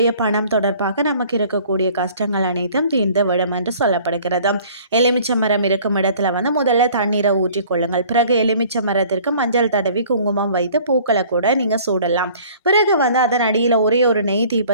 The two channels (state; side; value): inverted; both; correlation -0.52